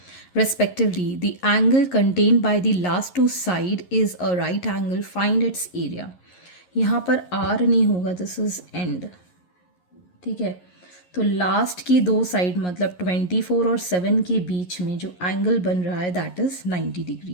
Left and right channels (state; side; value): late; right; 11 ms